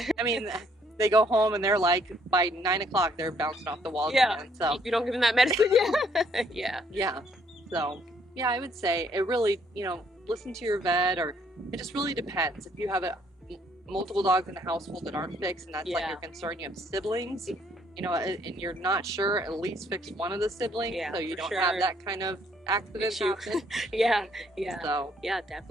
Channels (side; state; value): both; normal; correlation 0.66